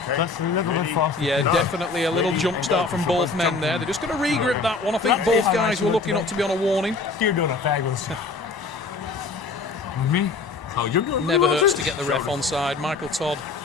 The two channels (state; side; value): quieter; right; 4.0 dB